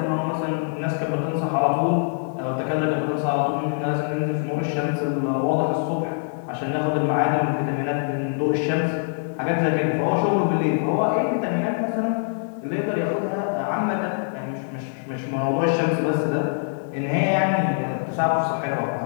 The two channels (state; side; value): silent; right; 57 dB below the other